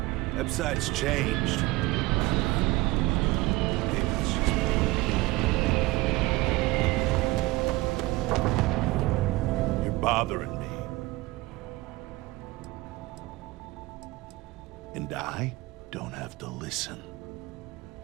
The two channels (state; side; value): quieter; left; 20.6 dB